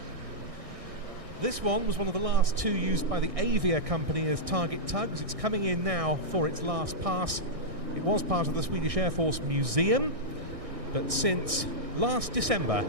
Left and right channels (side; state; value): left; late; 1.6 ms